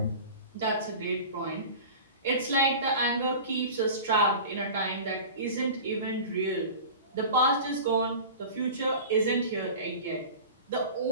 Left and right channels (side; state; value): both; inverted; correlation -0.36